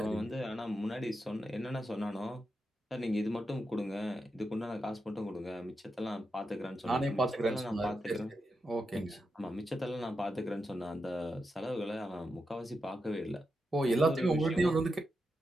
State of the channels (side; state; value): both; normal; correlation 0.87